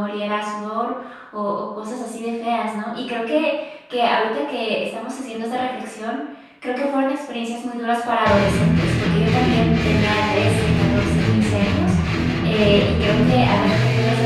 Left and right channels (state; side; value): identical; both; correlation 1.00